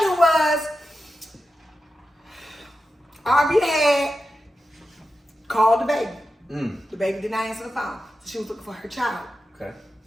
was, Ari had called the baby. The baby did not answer the phone. So she was looking for her child. Okay.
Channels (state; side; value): normal; both; correlation 0.91